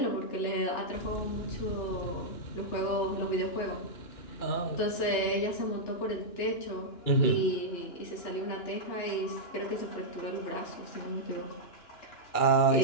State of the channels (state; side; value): late; right; 2.9 ms